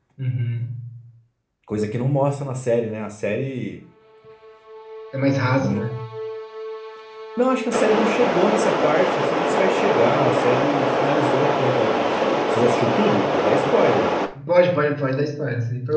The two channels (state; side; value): identical; both; correlation 1.00